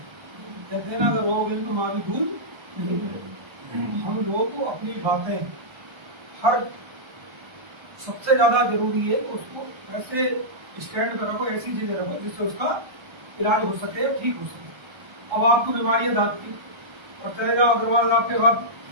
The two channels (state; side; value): late; left; 1.3 ms